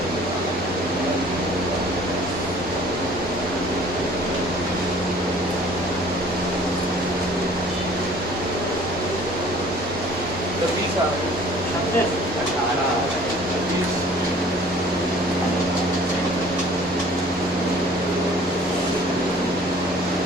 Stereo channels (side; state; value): both; normal; correlation 0.51